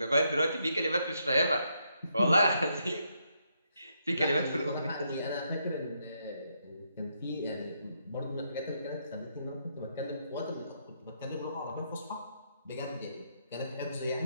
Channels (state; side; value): inverted; both; correlation -0.77